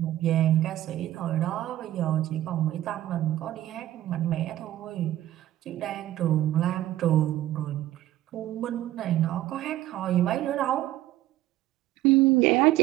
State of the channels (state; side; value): quieter; left; 14.2 dB